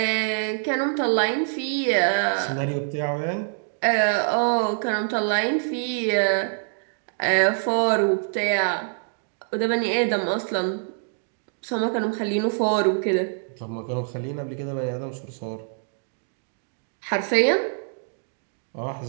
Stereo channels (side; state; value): left; silent; digital silence